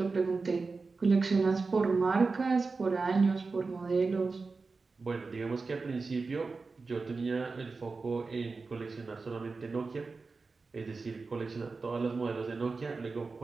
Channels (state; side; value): quieter; left; 4.1 dB